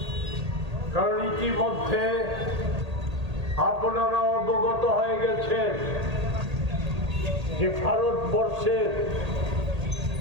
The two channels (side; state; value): left; late; 1.8 ms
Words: কারণ ইতিমধ্যে আপনারা অবগত হয়ে গেছেন যে ভারতবর্ষের